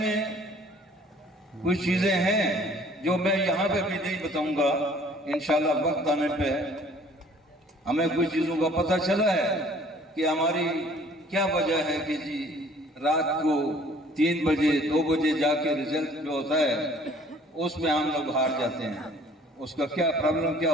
कुछ चीजें हैं जो मैं यहाँ पे भी नहीं बताऊंगा, इंशाअल्लाह वक्त आने पे हमें कुछ चीजों का पता चला है कि हमारी क्या वजह है कि जी रात को 3 बजे 2 बजे जाके रिजल्ट जो होता है उसमें हम लोग हार जाते हैं। उसका क्या प्रॉब्लम क्या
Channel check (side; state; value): both; normal; correlation 0.55